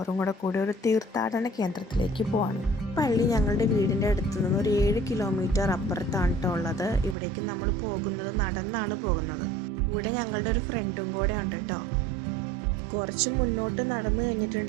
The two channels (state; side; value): drops out; left; at 7.2 s